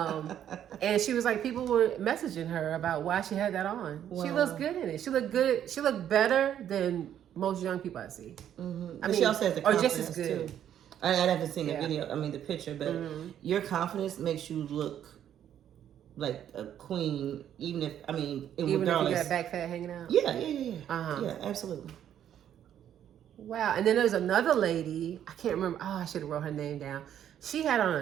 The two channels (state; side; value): quieter; left; 10.2 dB